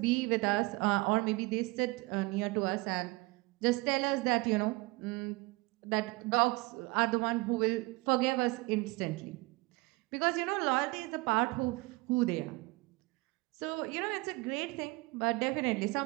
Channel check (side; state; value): left; quieter; 24.1 dB